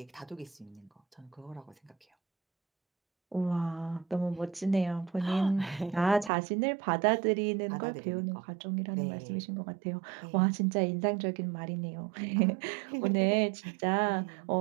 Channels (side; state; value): left; drops out; at 6.3 s